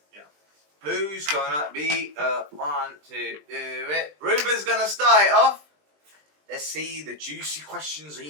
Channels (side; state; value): left; late; 20 ms